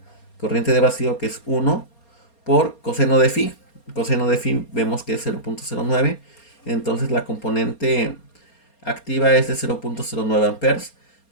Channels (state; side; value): late; right; 4.3 ms